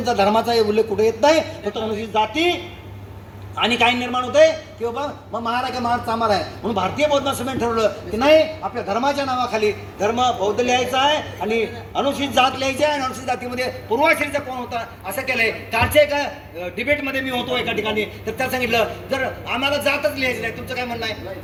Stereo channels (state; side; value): identical; both; correlation 1.00